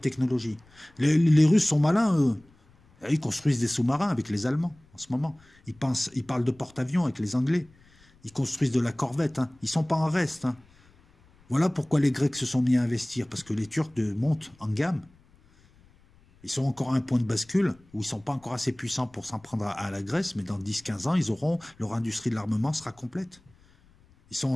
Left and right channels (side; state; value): left; noise; rumble, 29 dB below the sound